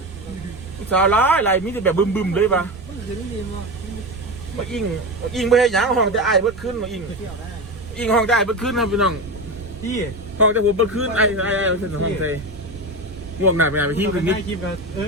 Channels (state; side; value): noise; right; rumble, 17 dB below the sound